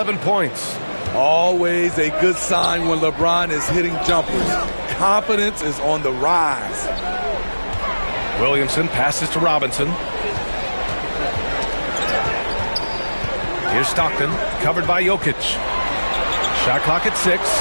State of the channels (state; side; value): inverted; both; correlation -1.00